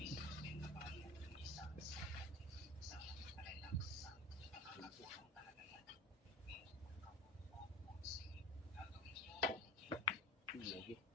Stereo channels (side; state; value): both; normal; correlation 0.34